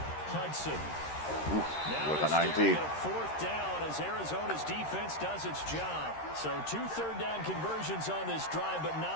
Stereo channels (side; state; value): right; late; 13 ms